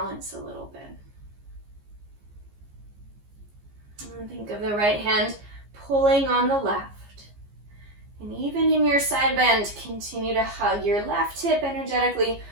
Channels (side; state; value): left; late; 15 ms